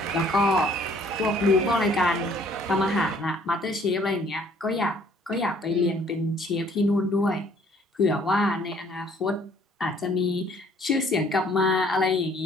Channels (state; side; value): normal; both; correlation 0.59